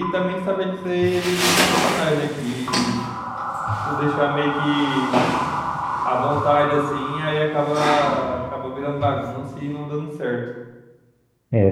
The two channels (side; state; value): both; identical; correlation 1.00